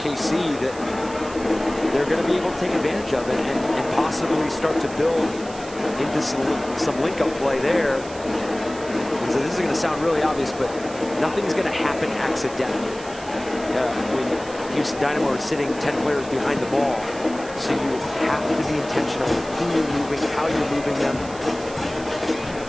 that they're going to be able to take advantage of and possibly start to build into some link-up play there. Because this is going to sound really obvious, but nothing's going to happen accidentally. When Houston Dynamo are sitting 10 players behind the ball. So you have to be intentional with who you're moving, how you're moving them.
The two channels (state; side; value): noise; right; hiss, 17 dB below the sound